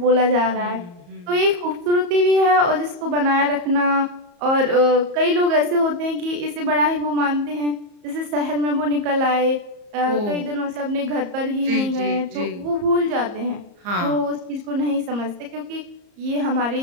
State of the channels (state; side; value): late; left; 34 ms